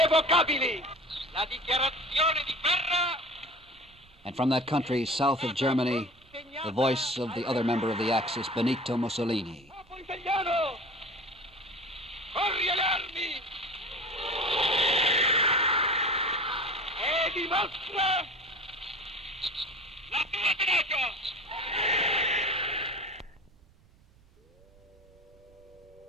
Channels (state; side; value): noise; right; rumble, 28 dB below the sound